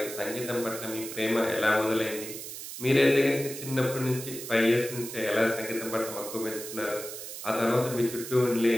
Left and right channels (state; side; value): noise; right; hiss, 9 dB below the sound